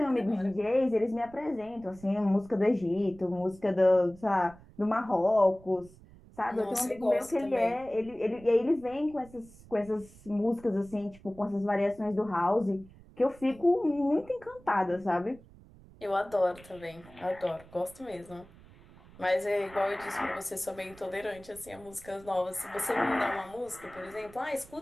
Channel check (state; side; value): noise; right; rumble, 22 dB below the sound